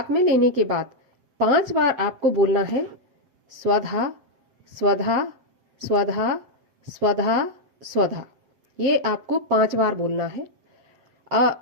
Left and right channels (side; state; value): left; late; 7.7 ms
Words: में लेने के बाद 5 बार आपको बोलना है स्वधा स्वधा स्वधा स्वधा स्वधा। ये आपको 5 बार बोलना है